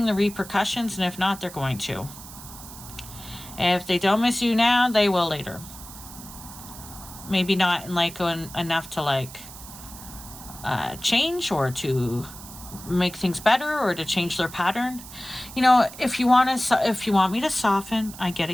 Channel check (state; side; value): noise; right; hiss, 15 dB below the sound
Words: the repercussions, and if not, they're going to. If they don't miss you now, they will later. Maybe not in like enough to like change or to make things better or to change their pattern. You know, if you want me to soften, I get